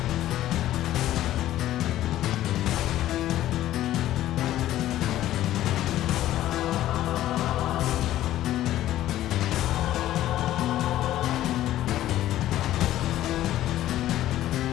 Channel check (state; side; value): quieter; right; 13.7 dB